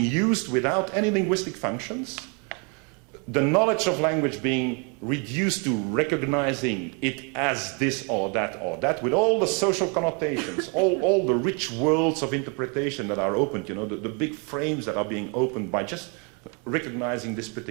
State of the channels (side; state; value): left; quieter; 34.9 dB